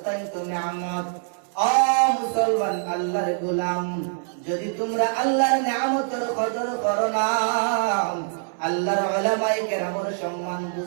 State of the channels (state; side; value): silent; left; 62 dB below the other